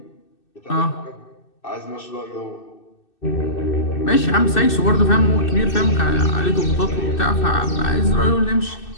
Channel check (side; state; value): right; late; 2.6 ms